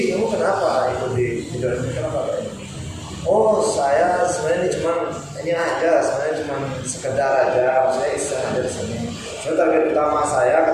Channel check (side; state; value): both; identical; correlation 1.00